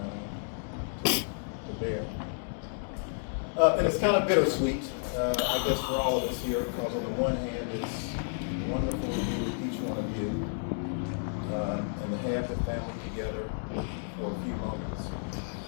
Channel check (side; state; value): right; silent; digital silence